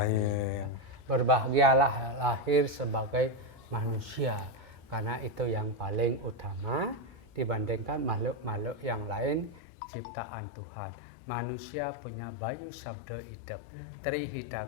Ya. Berbahagialah lahir sebagai manusia, karena itu yang paling utama dibandingkan makhluk-makhluk yang lain ciptaan Tuhan. Manusia punya bayu sabda hidup.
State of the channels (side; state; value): right; drops out; at 9.6 s